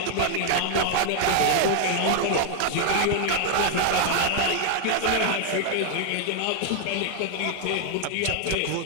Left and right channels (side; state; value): both; different; correlation 0.00